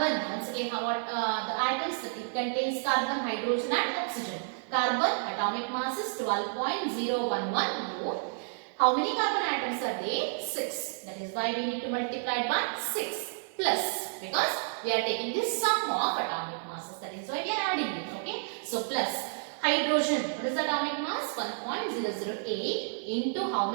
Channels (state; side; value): silent; left; digital silence